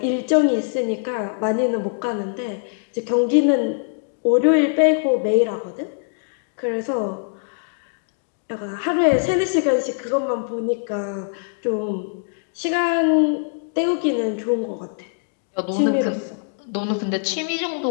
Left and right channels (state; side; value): silent; right; digital silence